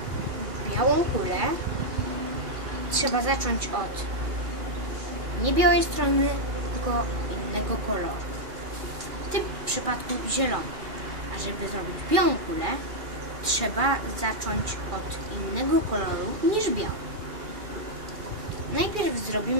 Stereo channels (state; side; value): late; left; 2.4 ms